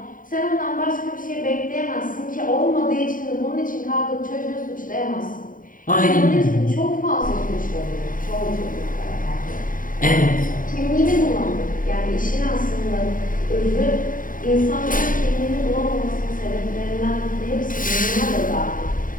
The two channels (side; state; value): right; late; 0.39 ms